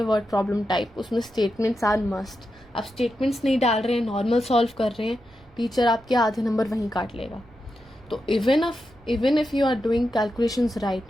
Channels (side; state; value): right; noise; rumble, 27 dB below the sound